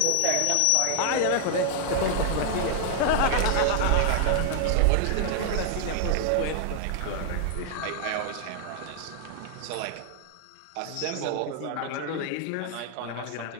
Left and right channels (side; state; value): both; different; correlation 0.00